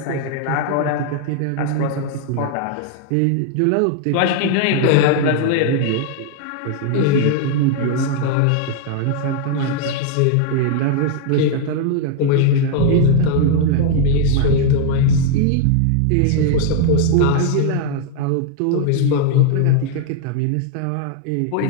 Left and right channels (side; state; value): both; different; correlation 0.00